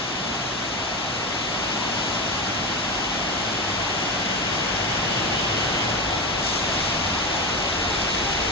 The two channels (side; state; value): both; normal; correlation 0.18